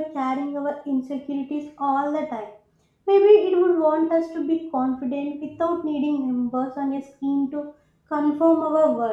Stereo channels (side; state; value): both; identical; correlation 1.00